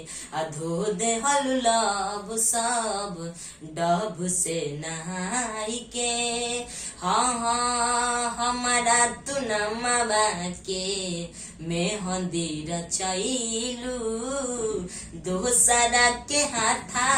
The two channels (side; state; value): both; identical; correlation 1.00